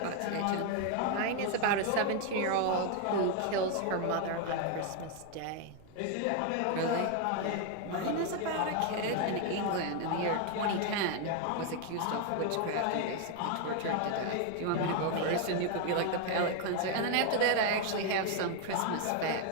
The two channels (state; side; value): different; both; correlation 0.01